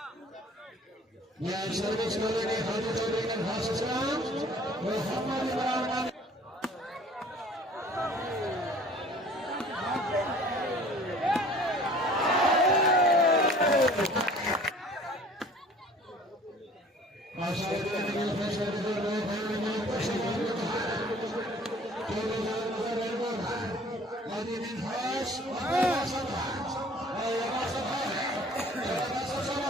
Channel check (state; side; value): normal; both; correlation 0.50